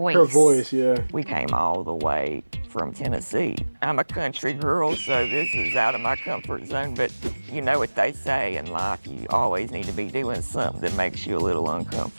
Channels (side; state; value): both; inverted; correlation -1.00